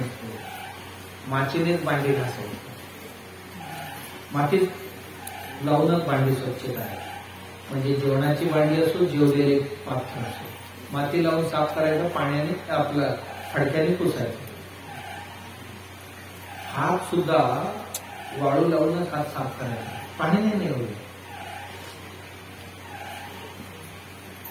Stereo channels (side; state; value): both; identical; correlation 1.00